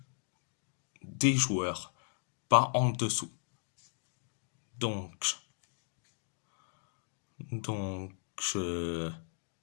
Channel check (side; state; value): right; silent; digital silence